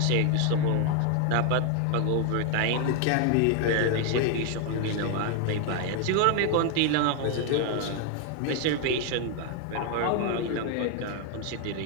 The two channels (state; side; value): different; both; correlation 0.01